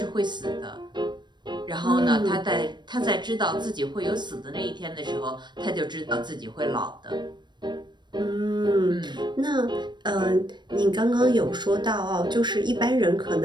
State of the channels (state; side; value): late; left; 0.22 ms